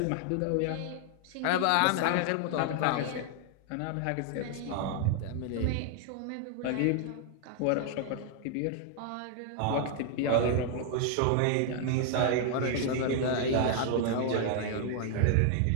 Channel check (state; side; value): different; both; correlation 0.00